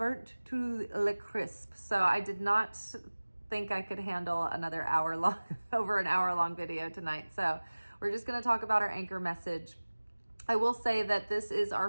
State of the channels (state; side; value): inverted; both; correlation -1.00